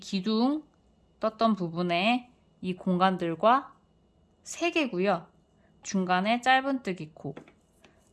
떴던 부분에 이 공간들과 3개고요. 중간에 짧은뜨기 코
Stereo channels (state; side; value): identical; both; correlation 1.00